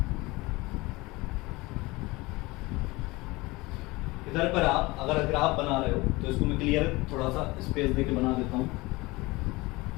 इधर पर आप अगर ग्राफ बना रहे हो तो इसको मैं क्लियर थोड़ा सा स्पेस देके बना देता हूं।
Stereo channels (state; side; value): quieter; right; 22.2 dB